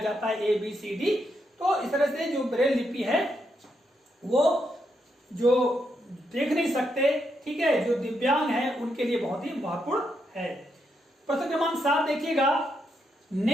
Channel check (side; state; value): both; normal; correlation 0.80